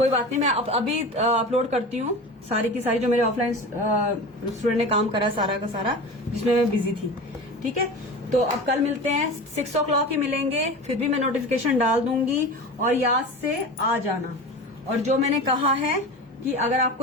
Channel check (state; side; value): normal; both; correlation 0.31